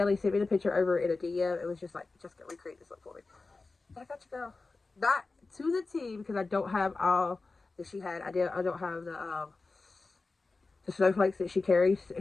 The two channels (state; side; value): quieter; right; 3.7 dB